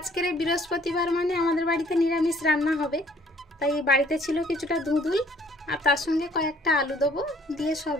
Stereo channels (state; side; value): normal; both; correlation 0.60